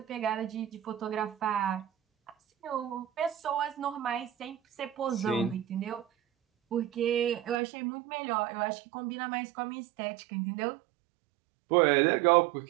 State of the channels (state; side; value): drops out; left; at 7.6 s